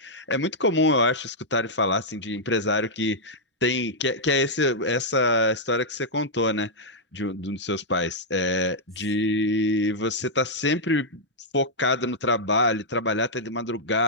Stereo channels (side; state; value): both; normal; correlation -0.06